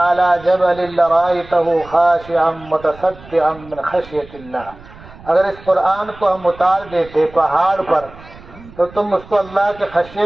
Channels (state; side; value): noise; right; rumble, 20 dB below the sound